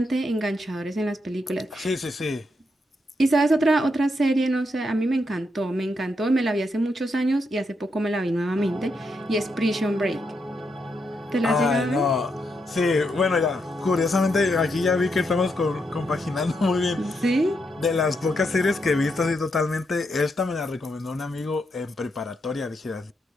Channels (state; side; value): normal; both; correlation 0.81